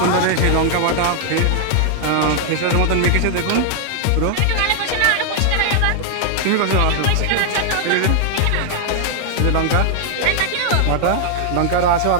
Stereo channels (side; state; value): both; different; correlation 0.00